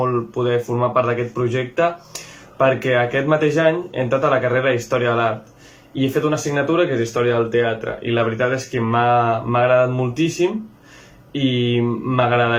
poder formar part d'aquest projecte perquè aquest mateix any he entrat a la carrera d'Història de l'Art i he fet una assignatura que és Història del Teatre i la veritat és que m'ha agradat moltíssim i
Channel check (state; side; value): identical; both; correlation 1.00